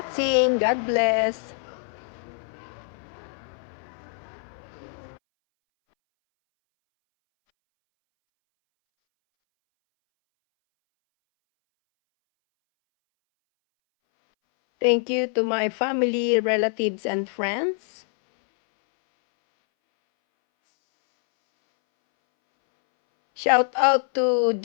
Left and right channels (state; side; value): silent; right; 62 dB below the other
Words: God bless. Thank you to my family, relatives, and friends. Shout out to